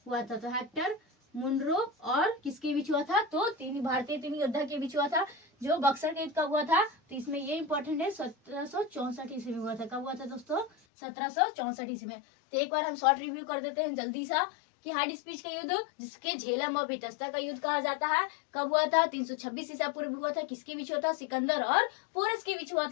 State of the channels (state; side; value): drops out; right; at 10.7 s